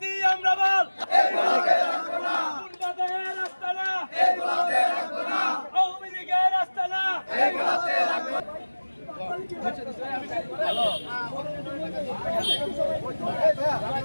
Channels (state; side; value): inverted; both; correlation -1.00